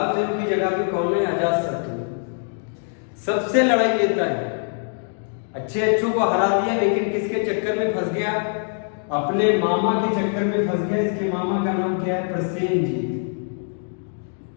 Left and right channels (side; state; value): right; silent; digital silence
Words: देव की जगह पे कौन है? अजातशत्रु। सबसे लड़ाई लेता है, अच्छे अच्छों को हरा दिया, लेकिन किसके चक्कर में फंस गया? अपने मामा के चक्कर में फंस गया। इसके मामा का नाम क्या है? प्रसेनजीत।